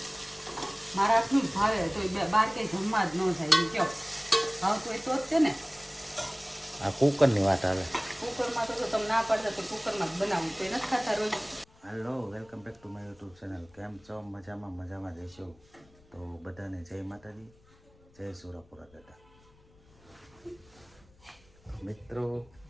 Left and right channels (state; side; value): noise; left; rumble, 29 dB below the sound